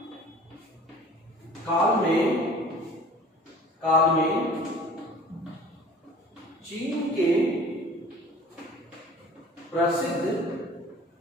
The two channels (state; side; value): normal; both; correlation 0.47